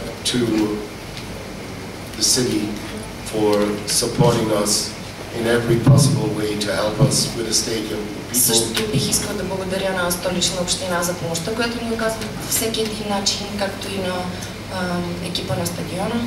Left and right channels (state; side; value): identical; both; correlation 1.00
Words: to the city for supporting us in every possible way to help us with a stadium. Също бих искал да благодаря на Столична община за помощта, която ни оказва всеки един начин, както и на екипа на стадиона.